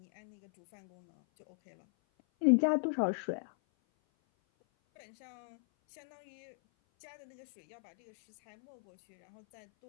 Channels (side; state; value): right; silent; 53 dB below the other